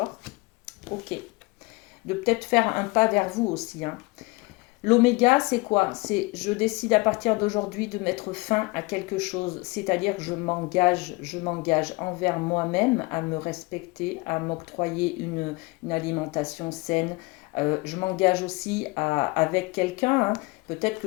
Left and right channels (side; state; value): right; quieter; 24.3 dB